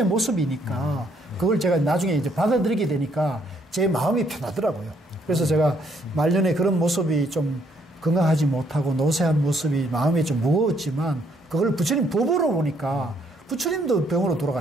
모습이니까 그걸 제가 나중에 이제 받아들이게 되니까 제 마음이 편하더라고요. 그래서 제가 말년에 그런 모습이 좀 건강하지 못하고 노쇠한 모습이 마음이 좀 무거웠지만 그걸 부처님 법으로 보니까 부처님도 병으로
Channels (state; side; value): normal; both; correlation 0.69